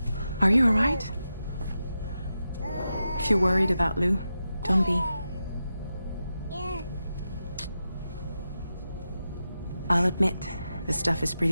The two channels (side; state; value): both; inverted; correlation -0.89